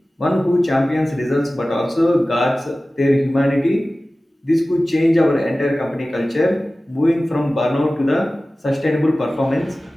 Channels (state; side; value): normal; both; correlation 0.96